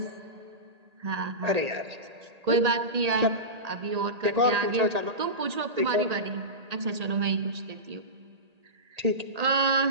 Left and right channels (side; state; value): left; late; 1.8 ms